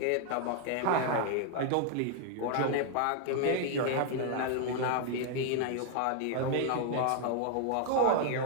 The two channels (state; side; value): different; both; correlation 0.00